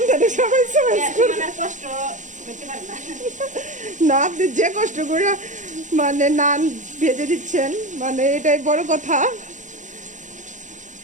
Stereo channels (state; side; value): late; left; 0.36 ms